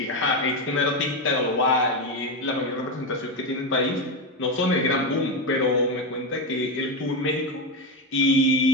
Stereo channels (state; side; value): normal; both; correlation 0.12